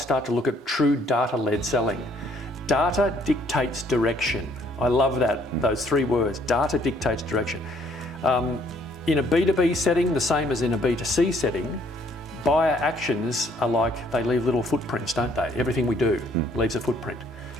to look at true data-led selling? Data dictates direction. I love those three words, data dictates direction. In a B2B setting, the same as in a B2C setting, buyer actions are like, they leave little footprints, don't they? Everything we do leaves a footprint.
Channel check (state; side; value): normal; both; correlation 0.64